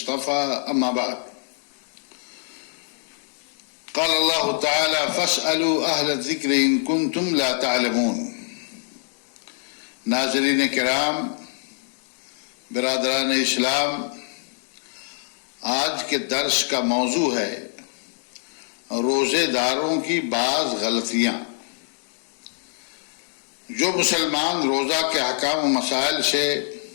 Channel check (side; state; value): right; silent; digital silence